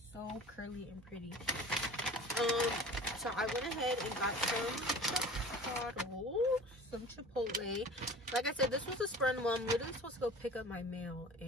so curly and pretty. So I went ahead and got some Chipotle. Like I said, this was a spur in the moment. I'm literally supposed to go pick up my mail,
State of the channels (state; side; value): normal; both; correlation 0.40